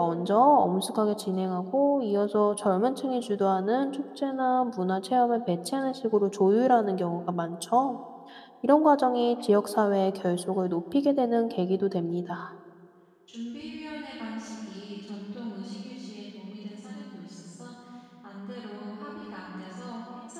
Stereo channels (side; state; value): both; identical; correlation 1.00